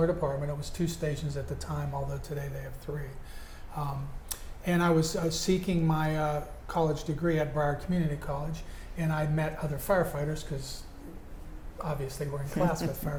department. It was 2 stations at the time, although today they have 3. And I was seeking my college degree at Broward Community College, and I met other firefighters, because obviously we're in class with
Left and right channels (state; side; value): identical; both; correlation 1.00